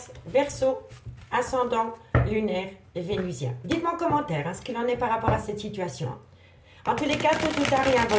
Verseau, ascendant lunaire vénusien. Dites-moi en commentaire ce qu'il en est par rapport à cette situation. En tous les cas, tout ou tard, il y a un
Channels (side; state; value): both; identical; correlation 1.00